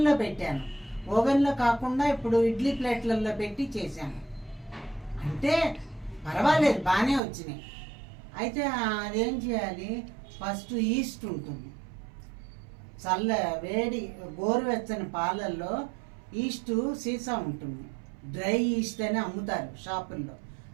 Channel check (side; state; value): left; drops out; at 7.2 s